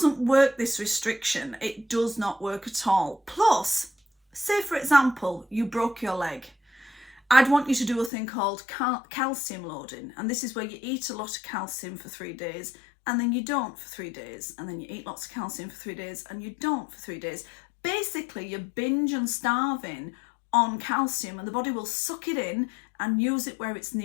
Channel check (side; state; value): right; drops out; at 8.1 s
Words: work, this restriction. It does not work at all. Plus, say for example, you broke your leg. I'd want you to do a thing called calcium loading. And this is where you eat a lot of calcium for 3 days and then you don't for 3 days. And then you eat lots of calcium for 3 days and you don't for 3 days. Basically, you're binge and starving on calcium, and the body will suck it in and use it where it's